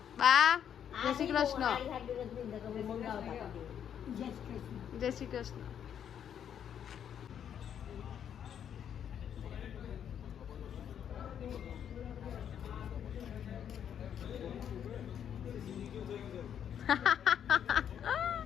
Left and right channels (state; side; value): quieter; right; 8.9 dB